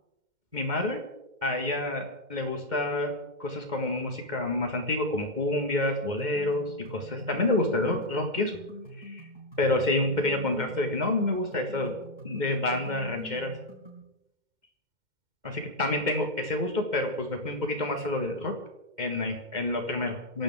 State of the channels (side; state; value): left; late; 2.1 ms